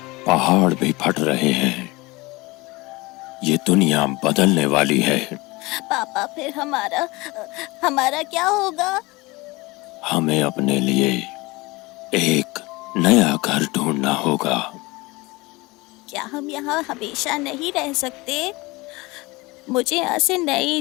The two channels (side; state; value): right; quieter; 22.9 dB